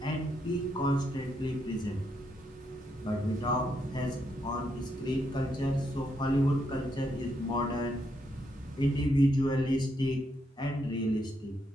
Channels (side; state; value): both; normal; correlation 0.78